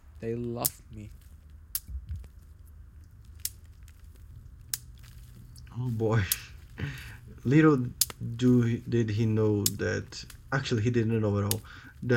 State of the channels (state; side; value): identical; both; correlation 1.00